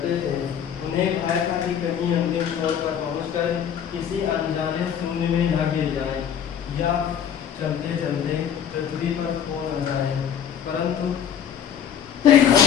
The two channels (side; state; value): right; quieter; 8.8 dB